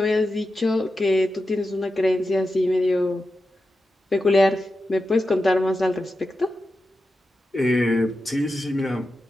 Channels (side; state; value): both; normal; correlation 0.90